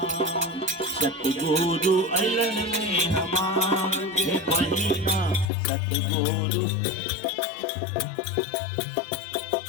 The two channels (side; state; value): right; drops out; at 5.5 s